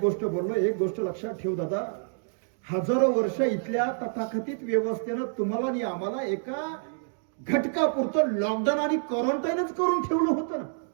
गोष्ट बोललो, एक गोष्ट लक्षात ठेव दादा, हजारो वर्ष इथल्या तथाकथित व्यवस्थेनं तुम्हाला आणि आम्हाला एका घटकापुरतं लॉकडाऊन आणि क्वारंटाईनच करून ठेवलं होतं ना.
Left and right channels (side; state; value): left; silent; digital silence